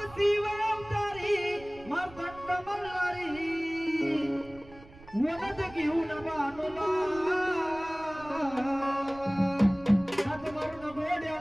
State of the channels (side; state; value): right; noise; rumble, 20 dB below the sound